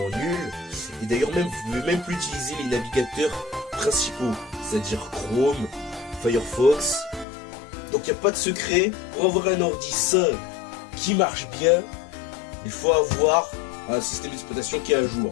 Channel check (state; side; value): drops out; right; at 7.2 s